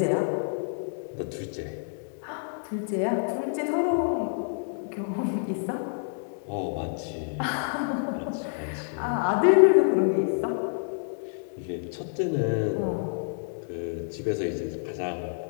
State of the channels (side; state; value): right; silent; digital silence